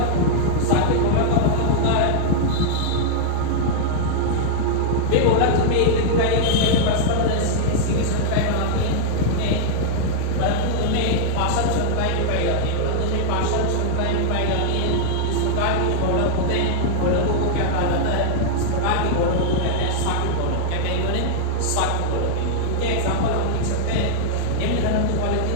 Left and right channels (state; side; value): different; both; correlation -0.01